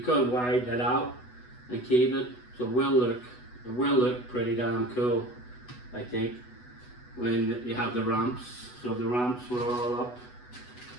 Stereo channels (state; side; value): late; right; 8.1 ms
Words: could widen it out and keep it. So, it will look pretty damn cool, I think, when you have the ramps. So the ramps were all up.